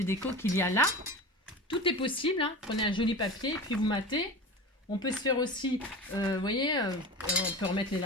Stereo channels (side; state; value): both; normal; correlation 0.31